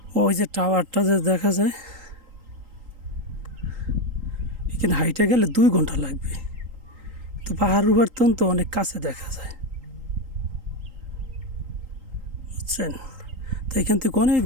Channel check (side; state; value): left; late; 3.8 ms